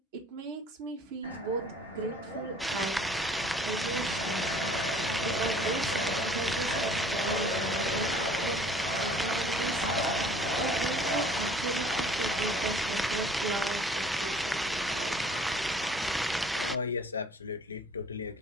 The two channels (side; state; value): both; normal; correlation 0.52